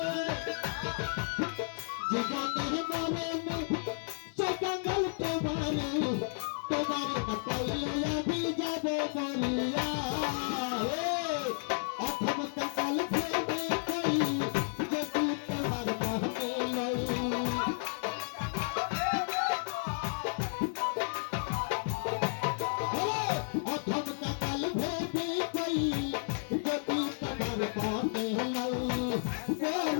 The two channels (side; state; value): right; silent; digital silence